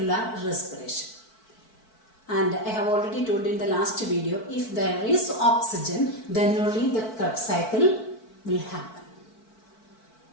respiration. And I have already told in the last video, if there is oxygen, then only the Krebs cycle will happen.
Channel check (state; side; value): late; right; 4.5 ms